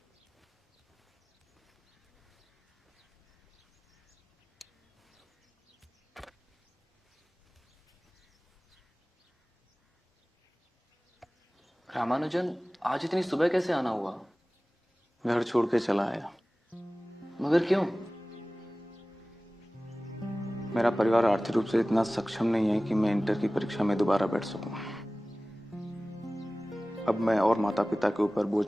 रामानुजन, आज इतनी सुबह कैसे आना हुआ? घर छोड़ के चला आया। मगर क्यों? मेरा परिवार आर्थिक रूप से इतना सक्षम नहीं है कि मैं इंटर की परीक्षा में दोबारा बैठ सकूं। अब मैं और माता पिता के ऊपर बोझ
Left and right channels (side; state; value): both; normal; correlation 0.97